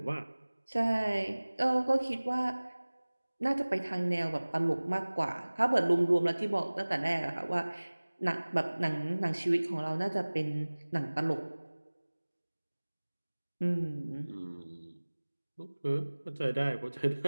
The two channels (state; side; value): inverted; both; correlation -1.00